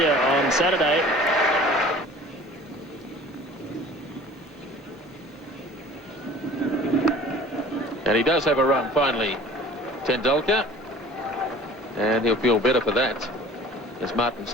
on Saturday. And he does have a run finally, Tendulkar, and he'll feel better for that as Martin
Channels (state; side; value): normal; both; correlation 0.46